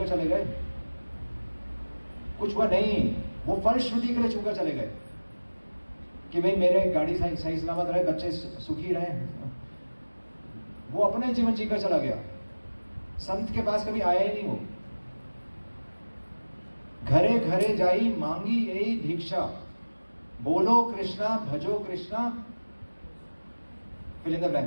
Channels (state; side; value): inverted; both; correlation -1.00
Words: चले गए, कुछ हुआ नहीं। वो फलश्रुति के लिए छूकर चले गए कि भाई मेरे गाड़ी सही सलामत रहे, बच्चे सुखी रहे। वो अपने जीवन जीकर चला गया, संत के पास कभी आया ही नहीं वो। घरे घरे जाई, मांगी यही भिक्षा। बोलो कृष्णा, भजो Krishna, fill in the